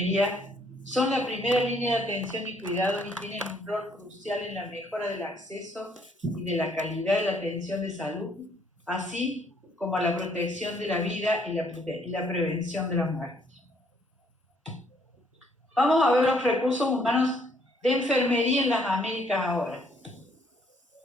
son la primera línea de atención y cuidado y tienen un rol crucial en la mejora del acceso y de la calidad de la atención de salud, así como a la protección de la vida y la prevención de la muerte. Vamos a ver los recursos humanos de enfermería en las Américas ahora.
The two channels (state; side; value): normal; both; correlation 0.66